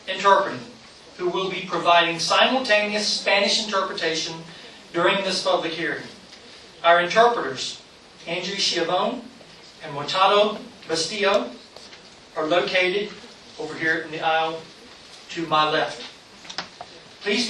Interpreting, who will be providing simultaneous Spanish interpretation during this public hearing. Our interpreters, Andrew Chiavone and Mortado Bastillo, are located over here in the aisle to my left. Please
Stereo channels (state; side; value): identical; both; correlation 1.00